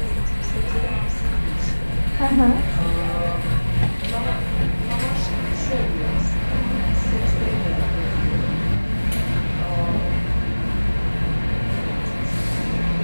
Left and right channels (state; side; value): inverted; both; correlation -1.00